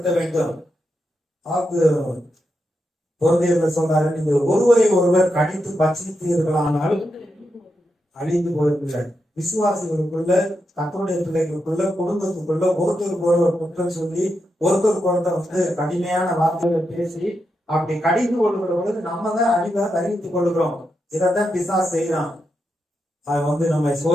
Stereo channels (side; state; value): both; normal; correlation 0.85